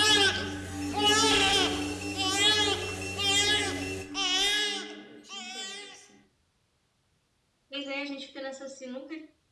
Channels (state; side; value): identical; both; correlation 1.00